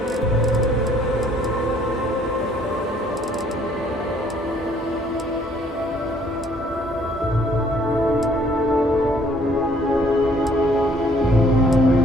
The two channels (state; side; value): normal; both; correlation 0.62